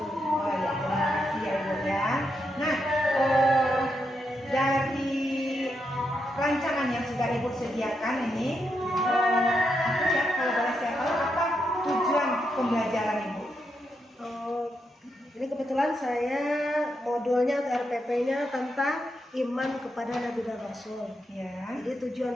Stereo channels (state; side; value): normal; both; correlation 0.82